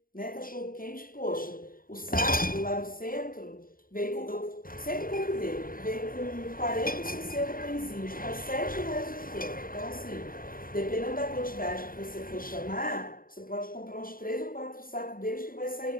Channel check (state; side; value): late; right; 0.41 ms